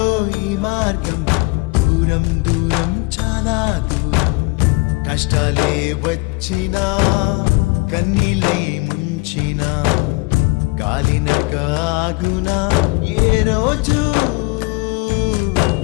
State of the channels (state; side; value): quieter; right; 25.7 dB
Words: ఈ మార్గం, దూరం దూరం చాలా దూరం. కష్టాలే వచ్చినా, కన్నీలై ముంచినా, గాలి నడక ఆగునా ఏ రోజు.